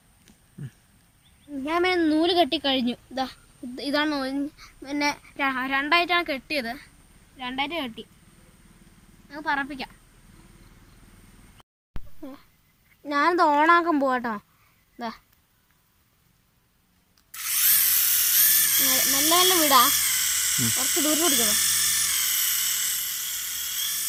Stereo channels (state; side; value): identical; both; correlation 1.00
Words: ഞാൻ പിന്നെ നൂല് കെട്ടി കഴിഞ്ഞു. ഇതാണ്. പിന്നെ രണ്ടായിട്ടാണ് കെട്ടിയത്. രണ്ടായിട്ട് കെട്ടി. നമുക്ക് പറപ്പിക്കാം. ഞാനിത് ഓണാക്കാൻ പോവാട്ടോ. നല്ല നല്ല വീടാ, കുറച്ച് ദൂരം പിടിക്കണോ,